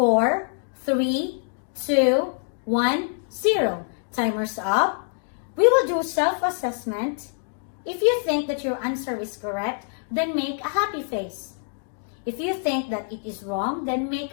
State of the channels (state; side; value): silent; right; 61 dB below the other